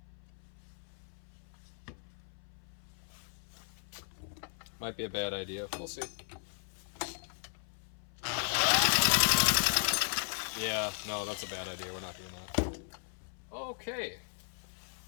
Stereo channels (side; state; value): right; silent; 54 dB below the other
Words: Might be a bad idea. We'll see. Yeah, no, that's a bad idea. We're not doing that. Okay.